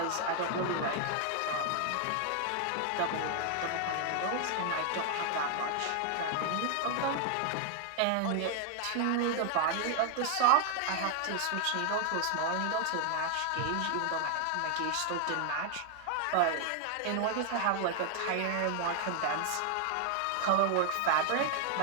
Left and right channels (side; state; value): both; different; correlation 0.00